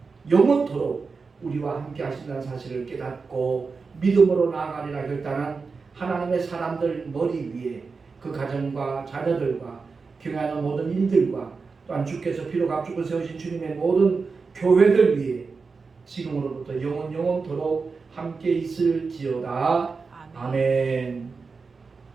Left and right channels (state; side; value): quieter; left; 4.7 dB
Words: 영원토록 우리와 함께 하신다는 사실을 깨닫고 믿음으로 나아가리라 결단한 하나님의 사람들 머리 위에 그 가정과 자녀들과 경영하는 모든 일들과 또한 주께서 피로 값주고 세우신 주님의 모든 교회들 위에 지금으로부터 영원토록 함께 있을지어다. 아멘.